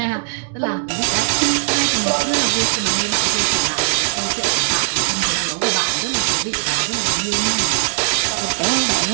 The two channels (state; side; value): silent; left; digital silence